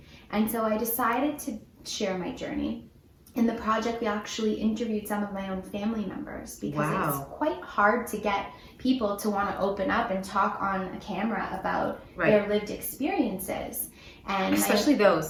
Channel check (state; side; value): identical; both; correlation 1.00